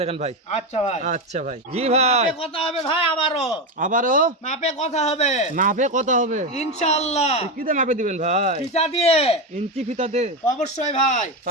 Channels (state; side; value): normal; both; correlation 0.13